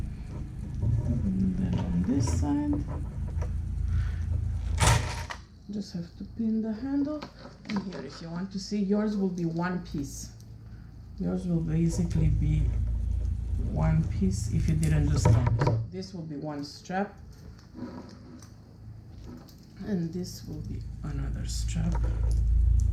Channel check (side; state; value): both; identical; correlation 1.00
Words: And then on this side, just have to pin the handle. And here, if you want to see, yours will be one piece. Yours will basically be one piece if you didn't do strap. So this will be one strap, and this will be another strap.